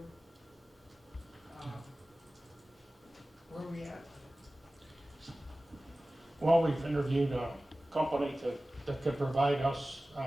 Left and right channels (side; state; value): both; normal; correlation 0.96